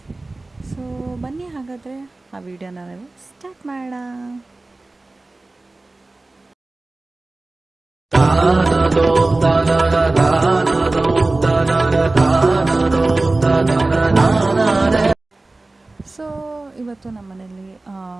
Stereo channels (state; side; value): quieter; left; 3.1 dB